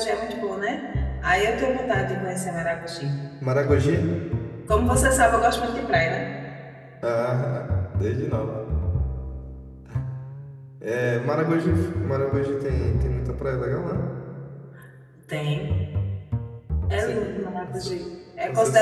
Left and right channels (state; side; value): identical; both; correlation 1.00